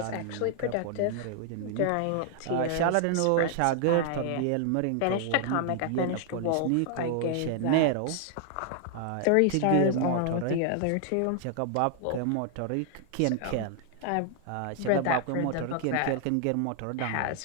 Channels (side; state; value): both; different; correlation 0.00